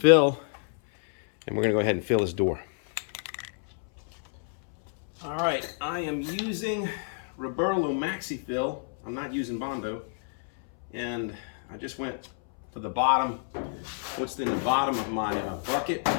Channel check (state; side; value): silent; right; 59 dB below the other